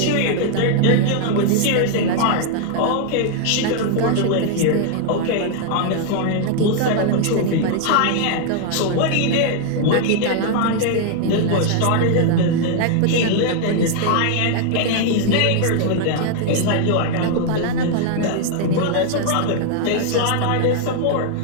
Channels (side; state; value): both; different; correlation 0.00